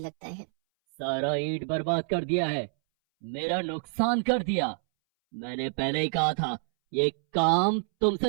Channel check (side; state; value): left; silent; 60 dB below the other